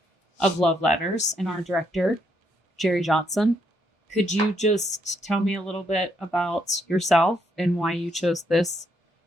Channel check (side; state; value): both; normal; correlation 0.75